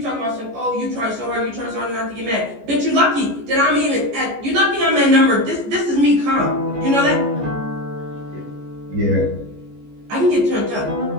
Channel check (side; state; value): left; late; 14 ms